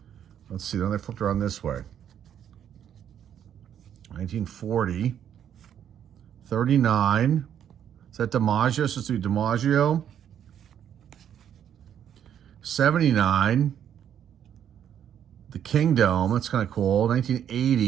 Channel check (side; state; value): left; quieter; 9.5 dB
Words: Let's see. Then they flipped around this way. 1940. 39. Is that DiMaggio? So let's do DiMaggio. 79. The Kingdom. That's kind of cool.